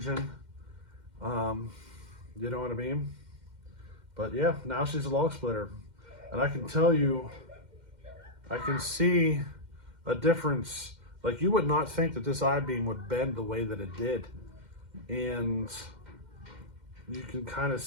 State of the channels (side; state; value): left; late; 2.1 ms